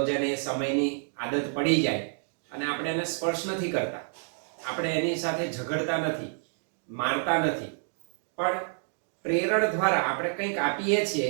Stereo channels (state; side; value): silent; left; 59 dB below the other